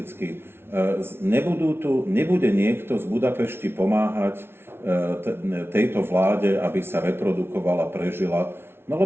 Nebude niekto z Budapešti pomáhať tejto vláde, aby sa reprodukovala, prežila, no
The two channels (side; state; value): left; late; 0.12 ms